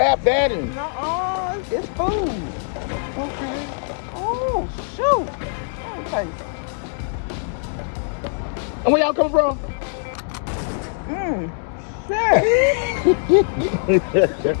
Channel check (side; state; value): right; silent; digital silence